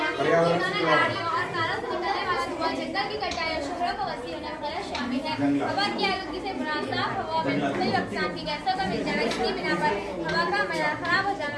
गाड़ियों और कारों से निकलने वाला धुआं, जंगल की कटाई और शहरों को वसी होना वगैरह शामिल है। हवा की आलूगी से मुराद साफ हवा में मुख्तलिफ अक़साम की गैसों का मिल जाना, इसकी बिना पर हवा का मयार खराब हो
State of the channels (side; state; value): both; identical; correlation 1.00